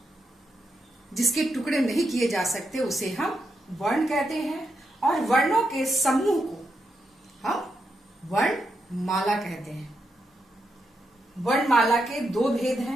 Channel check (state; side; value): normal; both; correlation 0.84